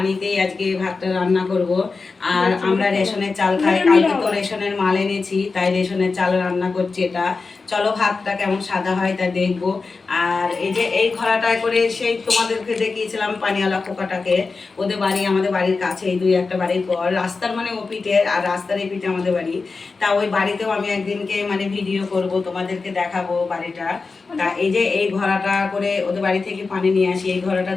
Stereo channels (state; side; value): quieter; right; 4.3 dB